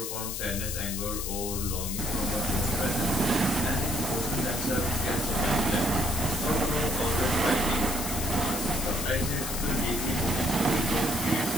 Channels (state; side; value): noise; left; hiss, 5 dB below the sound